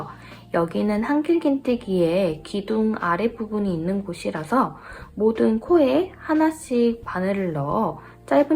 여기는 한길긴뜨기의 기둥 아랫부분이 있는 곳이라서 모든 코에 하나씩 바늘을 넣어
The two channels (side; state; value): both; identical; correlation 1.00